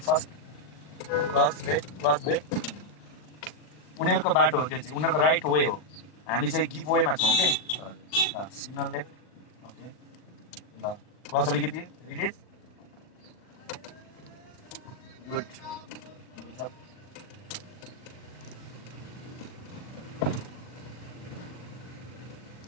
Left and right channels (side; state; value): right; late; 40 ms